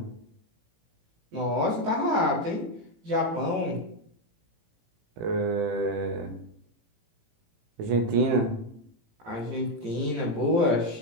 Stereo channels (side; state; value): left; late; 18 ms